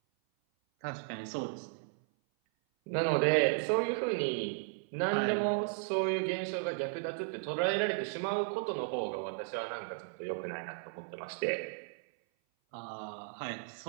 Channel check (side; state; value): left; silent; 54 dB below the other